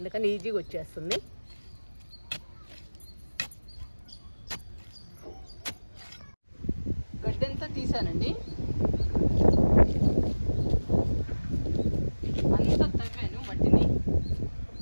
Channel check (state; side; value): inverted; both; correlation -1.00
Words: ఈజీగా వచ్చేస్తుంది. గడ్డి అంతా తీసానండి. అంతా తవ్వాను మట్టిని.